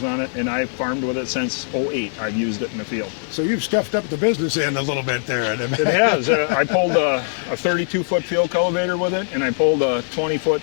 on it, and I've farmed with it since '08. I've used it in the field. So you've stuffed up the business end a little bit there. It has. I pulled a 32-foot field cultivator with it, and I pulled a 20-foot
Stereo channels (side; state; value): right; silent; digital silence